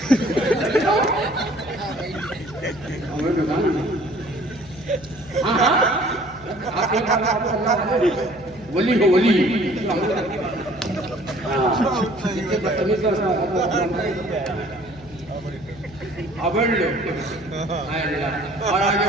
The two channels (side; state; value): left; noise; hum, 21 dB below the sound